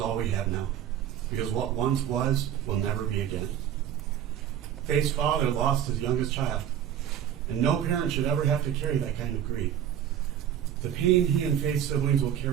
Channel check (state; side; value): quieter; left; 10.0 dB